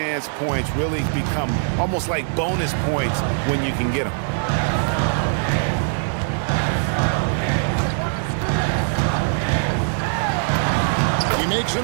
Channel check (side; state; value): left; silent; 61 dB below the other